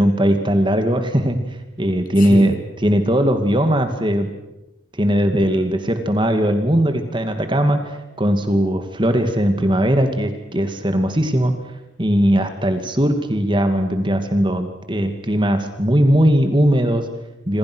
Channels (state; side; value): normal; both; correlation 0.85